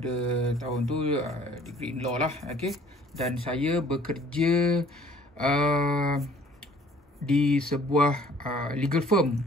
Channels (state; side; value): normal; both; correlation 0.55